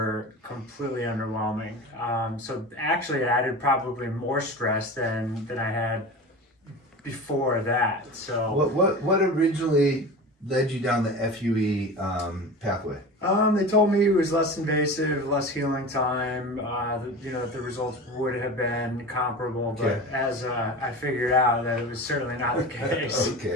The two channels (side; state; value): both; normal; correlation 0.32